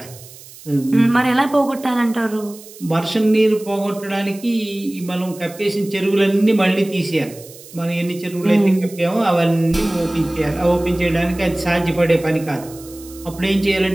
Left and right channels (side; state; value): right; noise; hiss, 19 dB below the sound